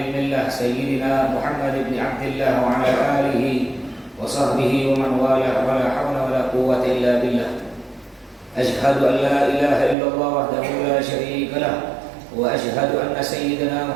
millah sayyidina Muhammad ibn Abdillah wa ala alihi wa sahbihi wa man walah wa la hawla wa la quwwata illa billah. أشهد أن لا إله إلا الله وحده لا شريك له وأشهد أن سيدنا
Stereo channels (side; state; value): left; drops out; at 10.0 s